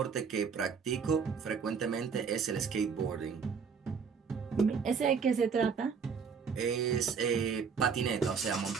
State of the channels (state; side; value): quieter; left; 6.1 dB